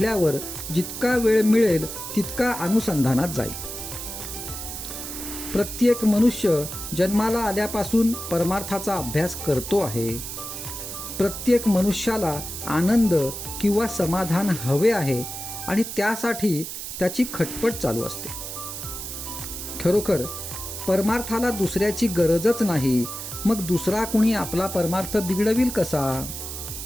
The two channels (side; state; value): right; noise; hiss, 8 dB below the sound